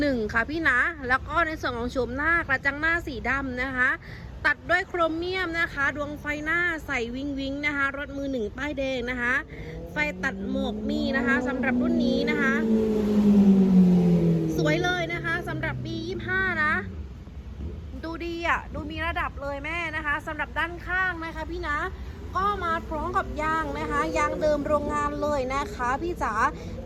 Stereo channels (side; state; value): both; identical; correlation 1.00